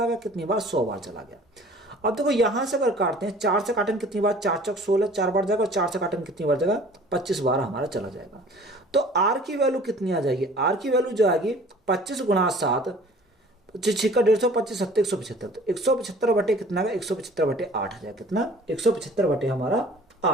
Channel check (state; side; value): normal; both; correlation 0.49